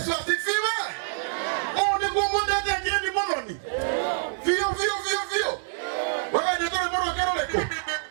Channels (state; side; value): silent; left; digital silence